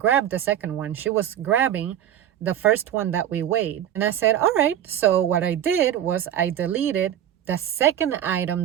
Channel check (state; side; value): quieter; left; 10.8 dB